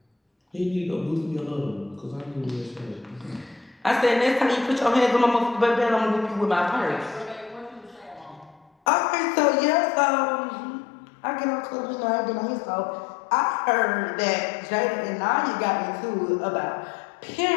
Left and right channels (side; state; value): right; drops out; at 8.7 s